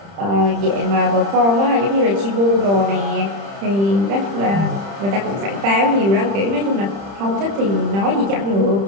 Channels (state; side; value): late; left; 30 ms